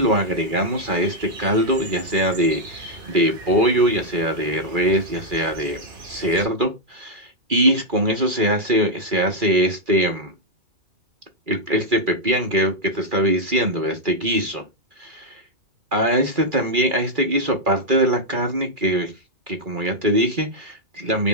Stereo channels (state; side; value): late; left; 2.4 ms